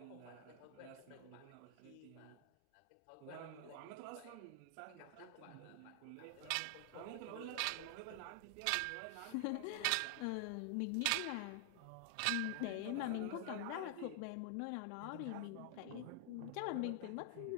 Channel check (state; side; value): different; both; correlation 0.00